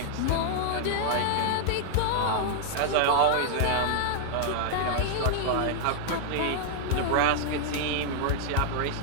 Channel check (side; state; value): both; different; correlation -0.01